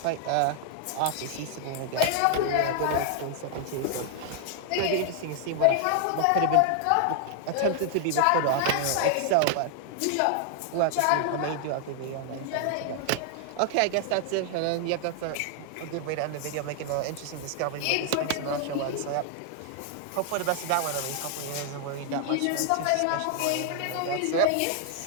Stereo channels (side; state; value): both; different; correlation 0.00